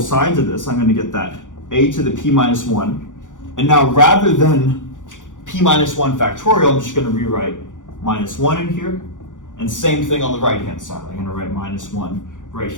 sides of this, I'm going to get that a to the p minus 1. And now rather than p minus 1 factorial, I'm just going to rewrite minus 1 in here. And same thing on the right-hand side. I'm going to write minus 1 right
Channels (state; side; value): late; right; 0.87 ms